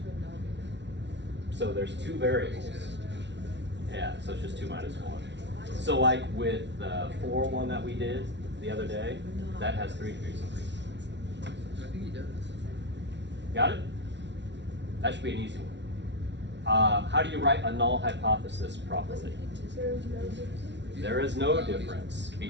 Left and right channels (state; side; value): late; left; 0.51 ms